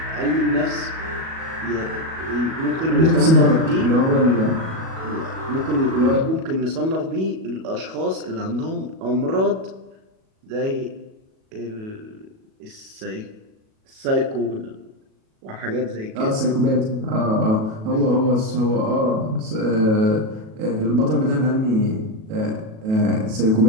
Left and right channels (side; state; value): left; late; 37 ms